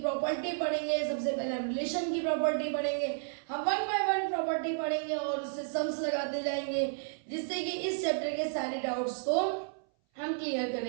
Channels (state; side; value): silent; left; 56 dB below the other